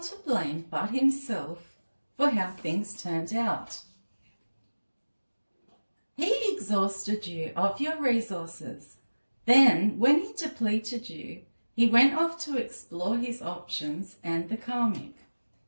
to blame but himself for how things turned out. He exhausted you of your resources. Then, when he depleted you, he went off to explore his options and the karmic.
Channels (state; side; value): inverted; both; correlation -1.00